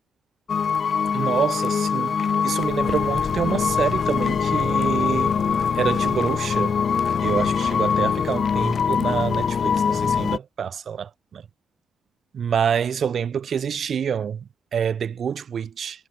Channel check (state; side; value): normal; both; correlation 0.77